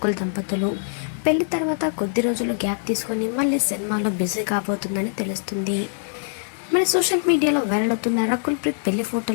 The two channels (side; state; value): right; silent; digital silence